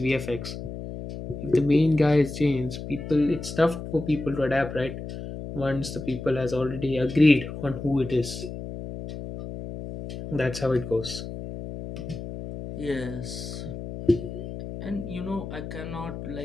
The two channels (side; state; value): left; noise; hum, 9 dB below the sound